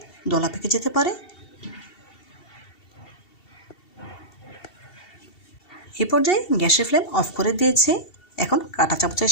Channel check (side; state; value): right; late; 2.7 ms